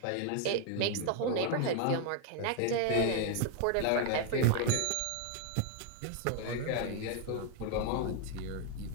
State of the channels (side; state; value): both; different; correlation 0.00